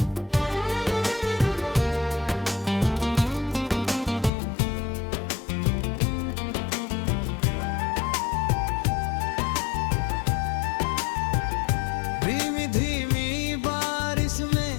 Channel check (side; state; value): right; drops out; at 4.3 s